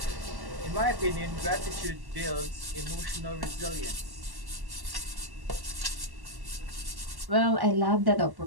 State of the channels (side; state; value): left; late; 1.1 ms